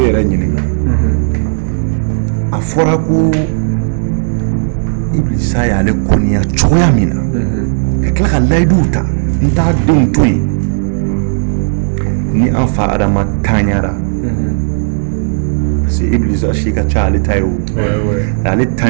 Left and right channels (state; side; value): silent; left; 71 dB below the other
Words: ɲininka a fɔra ko Ibilisa y'ale kɔniya cogoya min na ka tila ka layiduw ta n t'a denw to yen ni an fa Adama taɲara parce que Ibilisa si ka ca ale ta ye o ale